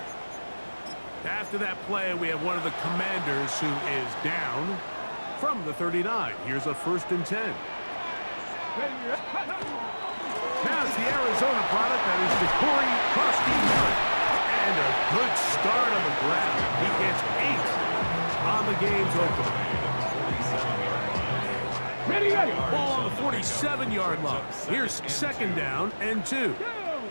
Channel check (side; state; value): both; inverted; correlation -1.00